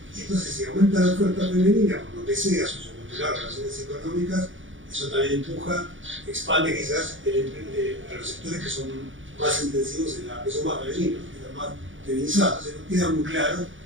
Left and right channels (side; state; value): left; late; 0.56 ms